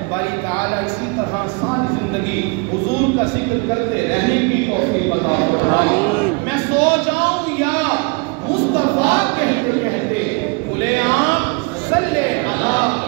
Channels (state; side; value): quieter; left; 31.4 dB